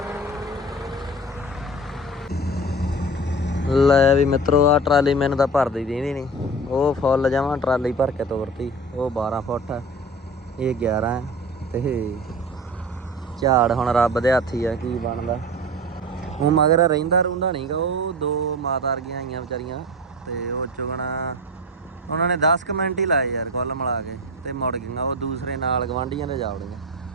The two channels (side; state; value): both; normal; correlation 0.32